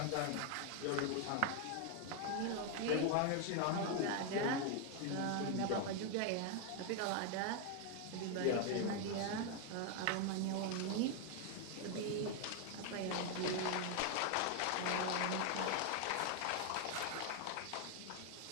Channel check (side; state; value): both; different; correlation 0.01